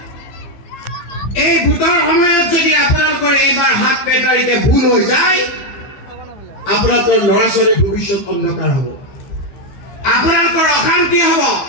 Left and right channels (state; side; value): late; right; 15 ms